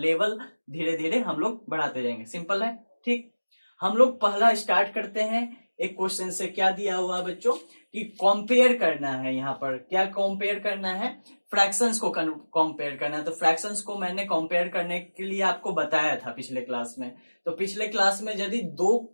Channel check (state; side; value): inverted; both; correlation -1.00